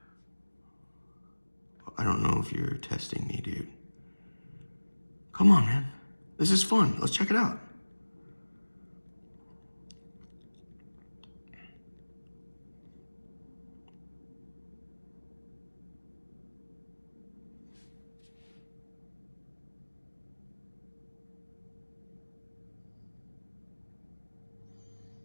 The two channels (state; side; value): inverted; both; correlation -1.00